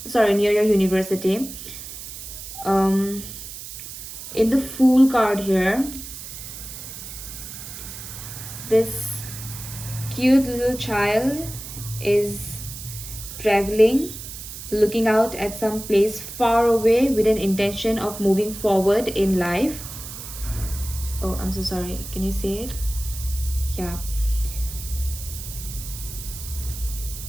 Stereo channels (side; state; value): right; noise; hiss, 11 dB below the sound